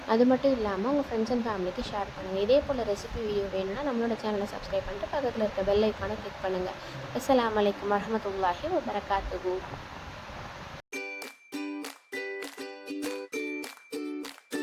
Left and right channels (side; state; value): both; identical; correlation 1.00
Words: அது மட்டும் இல்லாமல் உங்கள் ஃப்ரெண்ட்ஸ் அண்ட் ஃபேமிலிக்கு ஷேர் பண்ணுங்கள். இதே போல் ரெசிபி வீடியோ வேணும்னா நம்மளோட சேனலை சப்ஸ்கிரைப் பண்ணிட்டு பக்கத்தில் இருக்க பெல் ஐக்கானை கிளிக் பண்ணுங்கள். அஸ்ஸலாமு அலைக்கும் வரஹ்மத்துல்லாஹி வபரகாத்துஹு.